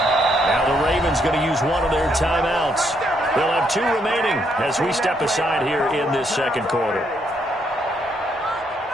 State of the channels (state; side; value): normal; both; correlation 0.74